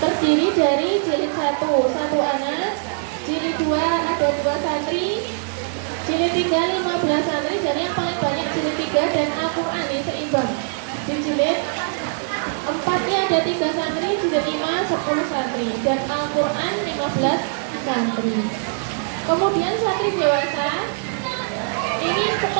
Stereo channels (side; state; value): left; silent; 64 dB below the other